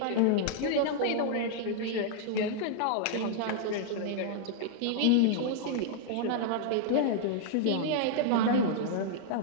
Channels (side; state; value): both; different; correlation -0.01